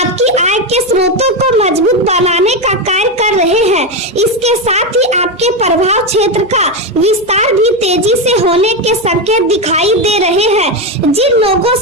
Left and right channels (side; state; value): right; noise; hum, 30 dB below the sound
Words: आय के स्रोतों को मजबूत बनाने का कार्य कर रहे हैं। इसके साथ ही आपके प्रभाव क्षेत्र का विस्तार भी तेजी से होने के संकेत दिखाई दे रहे हैं। जिन लोगों